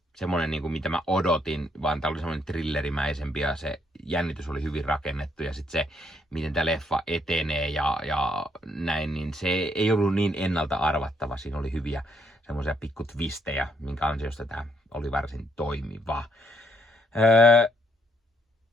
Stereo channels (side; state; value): both; normal; correlation 0.72